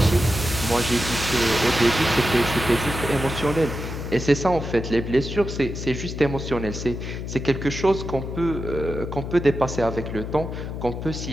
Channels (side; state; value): left; noise; hum, 6 dB below the sound